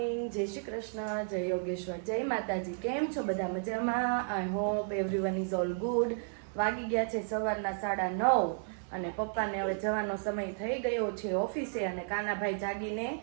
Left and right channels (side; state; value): left; silent; digital silence